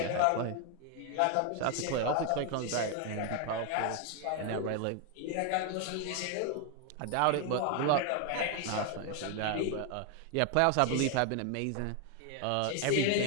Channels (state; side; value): different; both; correlation 0.01